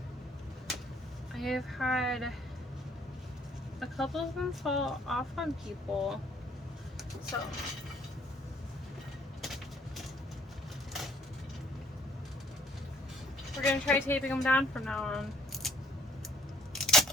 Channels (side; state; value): both; normal; correlation 0.62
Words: I have had a couple of them fall off on people, so we're going to try taping them down from now on.